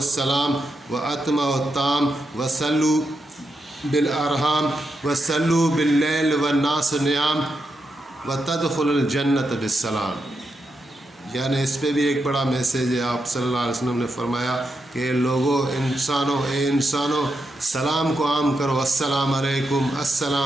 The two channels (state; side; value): normal; both; correlation 0.84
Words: واتموا الطعام وصلوا بالارحام وصلوا باللیل والناس نیام وتدخلوا الجنۃ بالسلام۔ یعنی اس پہ بھی ایک بڑا میسیج ہے۔ آپ صلی اللہ علیہ وسلم نے فرمایا کہ لوگوں، انسانوں سلام کو عام کرو، السلام علیکم